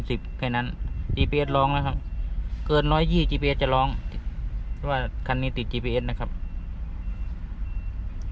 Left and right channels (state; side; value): identical; both; correlation 1.00